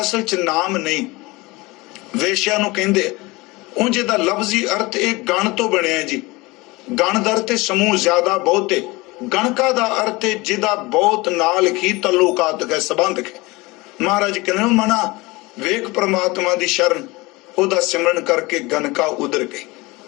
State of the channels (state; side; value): quieter; right; 22.9 dB